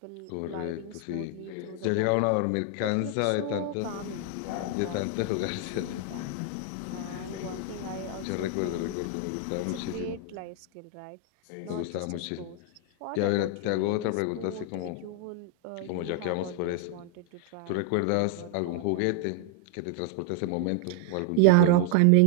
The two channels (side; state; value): both; different; correlation 0.00